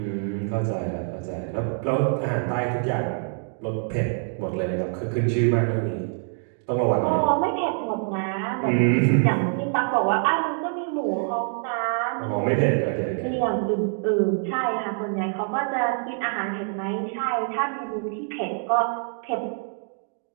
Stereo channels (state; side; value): silent; left; 56 dB below the other